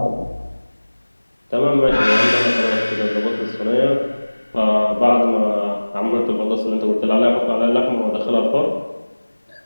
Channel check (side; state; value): both; inverted; correlation -1.00